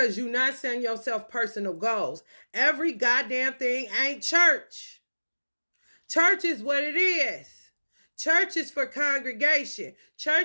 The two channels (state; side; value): inverted; both; correlation -1.00